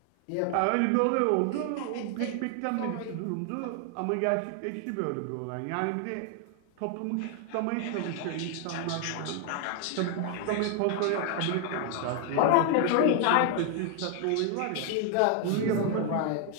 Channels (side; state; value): both; different; correlation 0.00